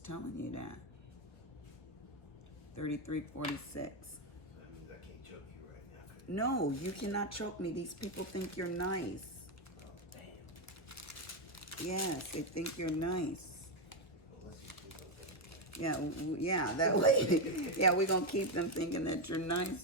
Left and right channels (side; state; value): right; late; 1.3 ms